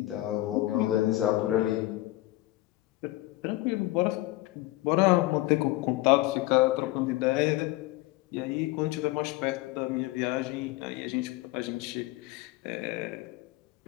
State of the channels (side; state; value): right; quieter; 18.0 dB